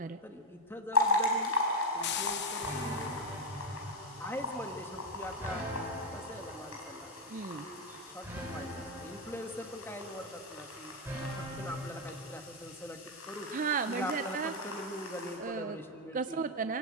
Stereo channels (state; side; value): normal; both; correlation 0.03